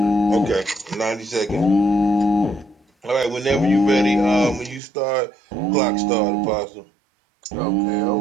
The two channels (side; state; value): left; drops out; at 4.8 s